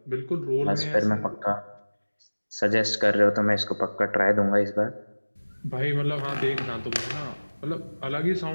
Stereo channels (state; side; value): inverted; both; correlation -1.00